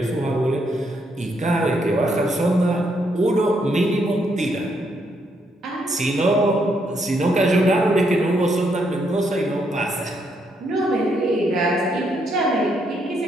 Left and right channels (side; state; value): both; normal; correlation 0.75